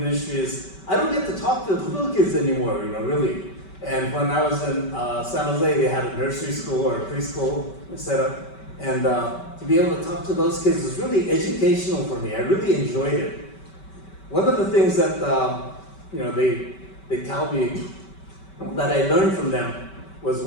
ministry is, I don't get to talk to the little kids anymore, you know, really. And when I was in San Jose, they had a nursery school or a preschool set up. And to be able to talk to those kids was really educational for me. I really enjoyed it. One of the things that, you know, they tell me that I learned from them was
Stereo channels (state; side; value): late; right; 5.2 ms